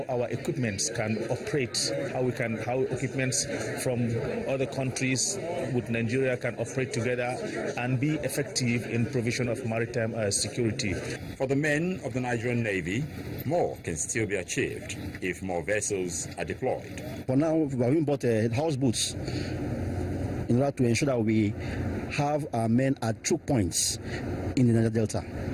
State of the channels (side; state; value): both; identical; correlation 1.00